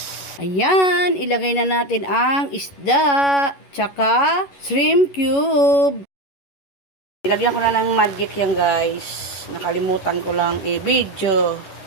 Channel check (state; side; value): late; right; 11 ms